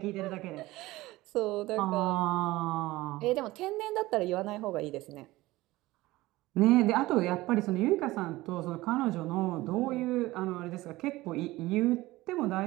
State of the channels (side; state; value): left; quieter; 18.6 dB